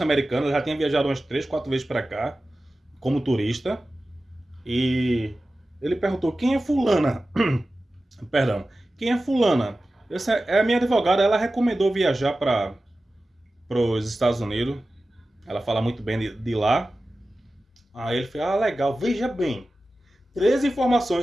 ela já tinha viajado umas 3, 4 vezes para cá como turista. E ele perguntou: quem é fulana? Perdão, quem é fulana? Essa é a minha advogada, ela recomendou viajar para os Estados Unidos. Ela fala muito bem de lá. Aí ele falou: ah, legal, veja bem. 3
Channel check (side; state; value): both; normal; correlation 0.95